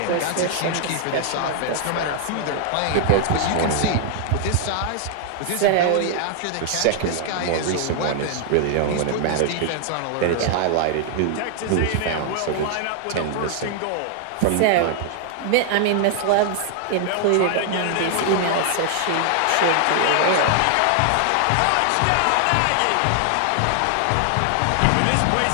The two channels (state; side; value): different; both; correlation 0.00